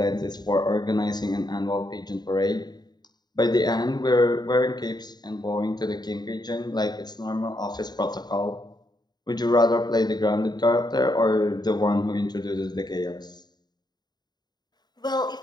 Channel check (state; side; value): late; right; 0.20 ms